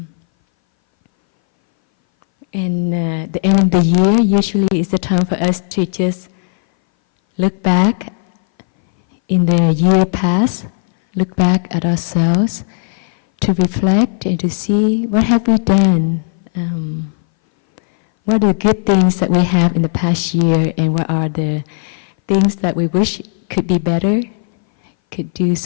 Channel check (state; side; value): silent; right; 62 dB below the other